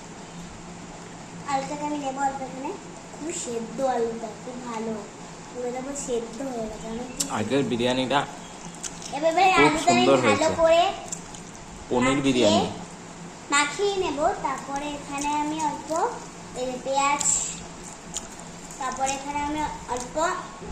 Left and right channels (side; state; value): both; identical; correlation 1.00